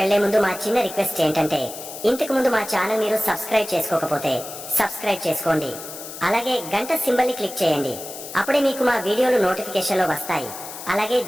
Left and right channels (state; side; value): noise; left; hiss, 11 dB below the sound